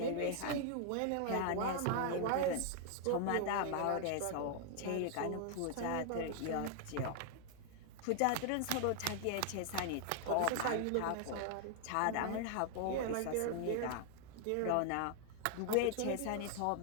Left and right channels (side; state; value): both; different; correlation 0.00